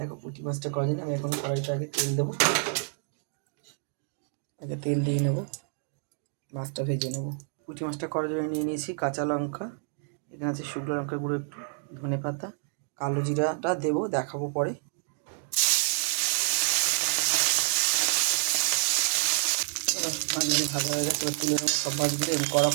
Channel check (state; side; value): silent; left; 56 dB below the other